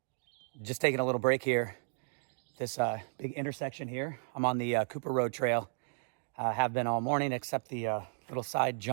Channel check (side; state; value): left; silent; digital silence